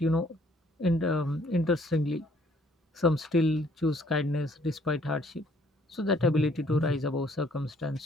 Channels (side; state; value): both; normal; correlation 0.63